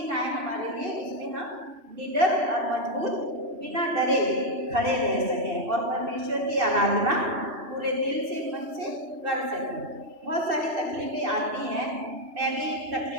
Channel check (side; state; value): left; late; 2.7 ms